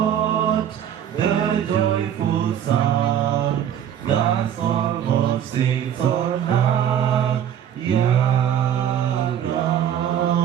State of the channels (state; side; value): quieter; left; 9.7 dB